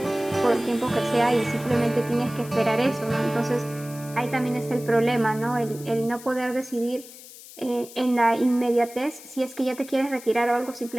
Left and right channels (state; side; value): noise; left; hiss, 17 dB below the sound